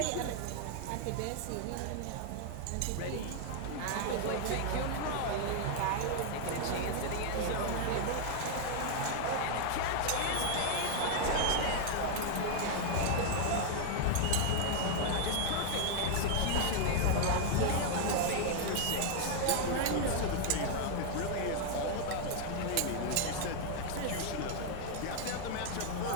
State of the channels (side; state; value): both; different; correlation 0.00